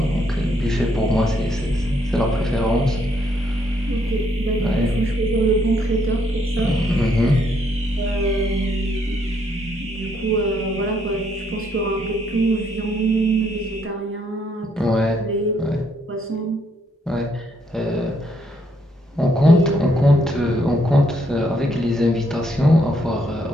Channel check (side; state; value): both; normal; correlation 0.72